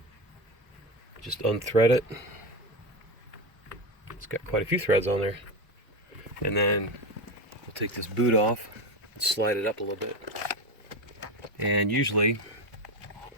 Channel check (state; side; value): normal; both; correlation 0.18